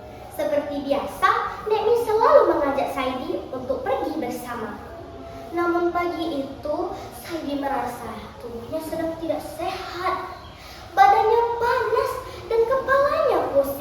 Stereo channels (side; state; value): both; identical; correlation 1.00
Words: Seperti biasa, Nekni selalu mengajak Saidi untuk pergi bersama. Namun pagi itu, Saidi merasa tubuhnya sedang tidak sehat. Badannya panas dan kepalanya